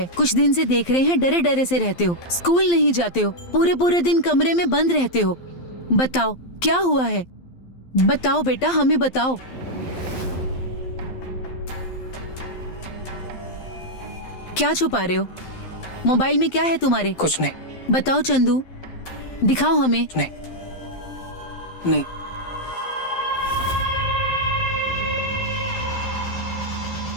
कुछ दिन से देख रहे हैं डरे डरे से रहते हो, स्कूल नहीं जाते हो, पूरे पूरे दिन कमरे में बंद रहते हो। बताओ क्या हुआ है? बताओ बेटा, हमें बताओ। क्या छुपा रहे हो? मोबाइल में क्या है तुम्हारे? कुछ नहीं। बताओ चंदू, दिखाओ हमें। नहीं नहीं।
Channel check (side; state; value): right; late; 12 ms